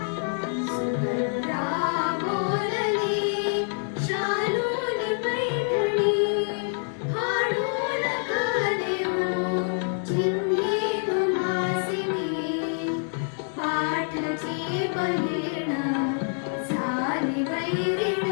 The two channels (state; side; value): silent; right; 61 dB below the other